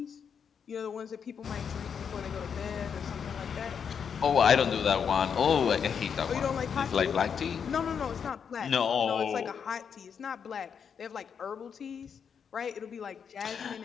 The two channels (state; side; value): quieter; right; 7.0 dB